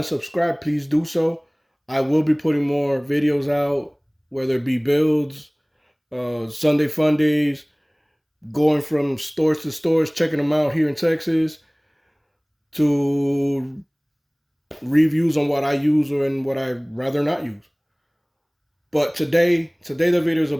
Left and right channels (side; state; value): both; identical; correlation 1.00